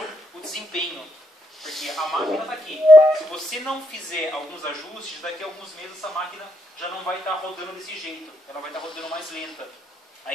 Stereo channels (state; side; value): normal; both; correlation 0.78